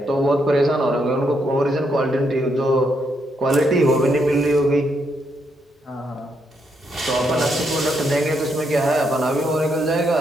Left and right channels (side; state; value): both; normal; correlation 0.78